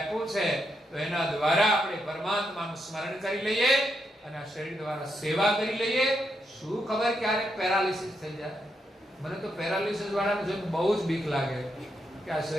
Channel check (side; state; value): both; normal; correlation 0.81